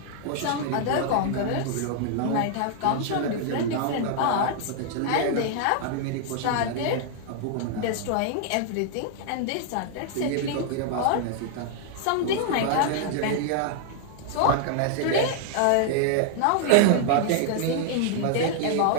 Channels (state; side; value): different; both; correlation 0.00